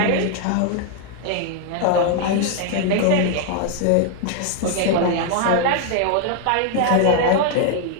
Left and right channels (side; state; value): both; different; correlation 0.00